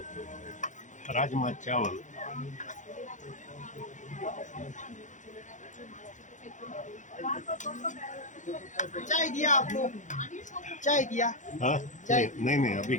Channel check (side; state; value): right; late; 0.36 ms